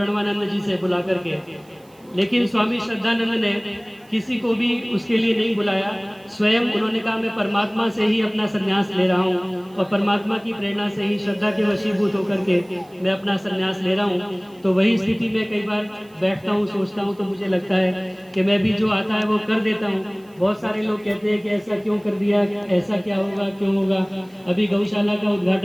जी से बुला करके, लेकिन स्वामी श्रद्धानंद ने किसी को भी उसके लिए नहीं बुलाया। स्वयं उन्होंने कहा मैं परमात्मा से ही अपना संन्यास ले रहा हूँ और परमात्मा की प्रेरणा से ही श्रद्धा के वशीभूत होकर के मैं अपना संन्यास ले रहा हूँ। तो वही स्थिति में कई बार बैठता हूँ, सोचता हूँ, तो मुझे लगता है कि मैं भी जो आता है वो कर देता हूँ। बहुत सारे लोग कहते हैं कि ऐसा क्यों कर दिया, ऐसा क्या होगा, क्यों होगा। अभी गौशाला का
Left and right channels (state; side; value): noise; right; hiss, 30 dB below the sound